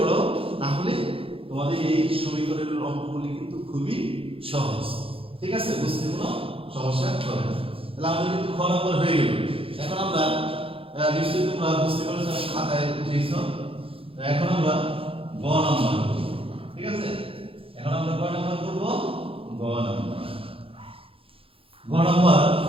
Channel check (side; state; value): left; late; 0.27 ms